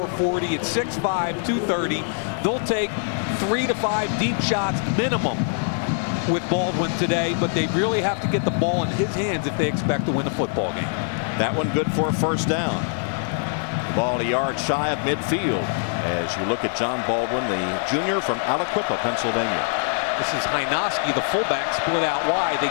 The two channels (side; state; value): right; silent; digital silence